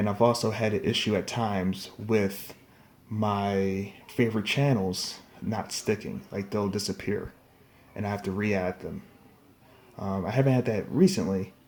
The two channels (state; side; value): identical; both; correlation 1.00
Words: I've also had an issue at times with my favorite channels not sticking, like they'll disappear and I have to re-add them. I haven't had that recently,